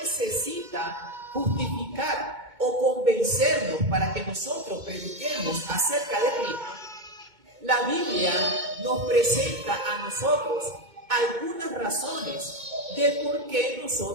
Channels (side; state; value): left; late; 2.2 ms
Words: justificar o convencernos para que nosotros prediquemos acerca de Cristo, la Biblia nos presenta a nosotros algunas razones de por qué